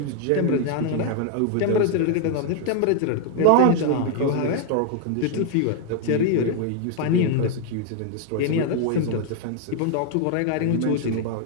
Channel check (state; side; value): different; both; correlation 0.00